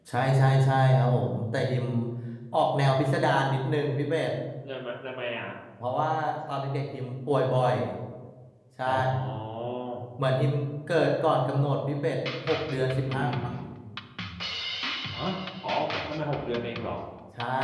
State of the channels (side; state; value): both; identical; correlation 1.00